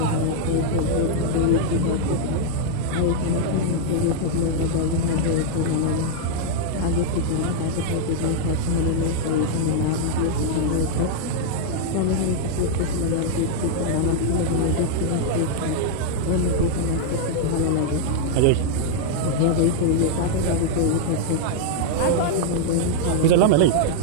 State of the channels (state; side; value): different; both; correlation 0.00